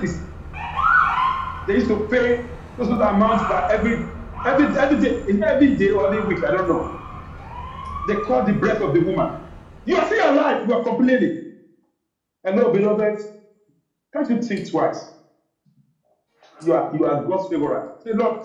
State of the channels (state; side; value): identical; both; correlation 1.00